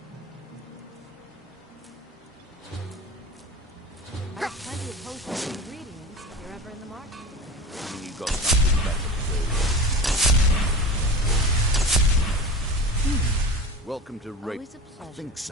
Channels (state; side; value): normal; both; correlation 0.32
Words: I have plenty of potions and ingredients if you're ever in the market. You got something better to do. Welcome to Raven. I think